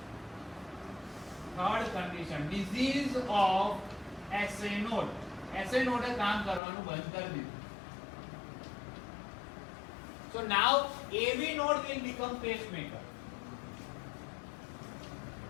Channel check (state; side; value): drops out; right; at 6.6 s